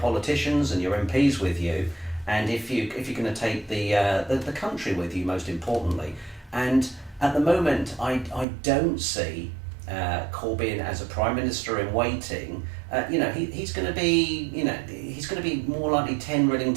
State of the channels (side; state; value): left; drops out; at 8.5 s